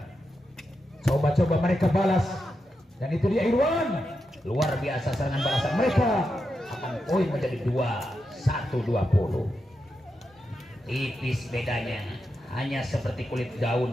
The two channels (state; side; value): normal; both; correlation 0.87